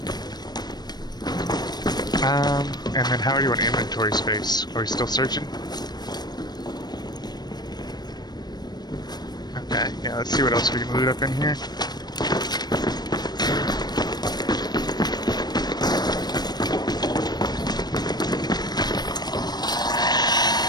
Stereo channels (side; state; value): right; late; 0.20 ms